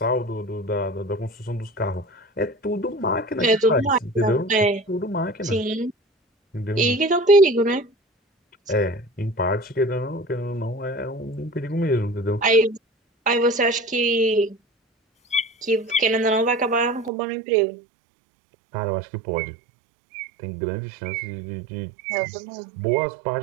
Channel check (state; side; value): drops out; left; at 17.1 s